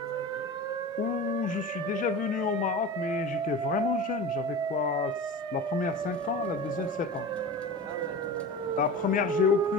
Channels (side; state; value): both; normal; correlation 0.32